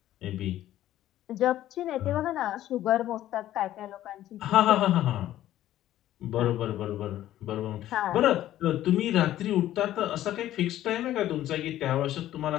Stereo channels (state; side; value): quieter; right; 13.3 dB